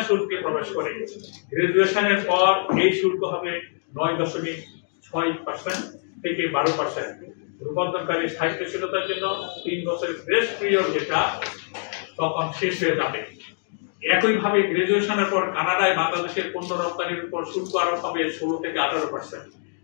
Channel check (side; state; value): right; silent; digital silence